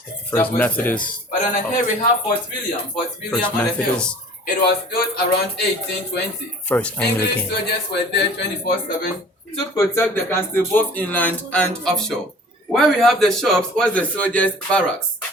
First Methodist. But on here we have Fort William on the hill. It was built around 1820. First Anglican. English soldiers were there 24/7 to protect the castle both inland and offshore. Where we have the shops was the soldiers' barracks.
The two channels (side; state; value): both; normal; correlation 0.47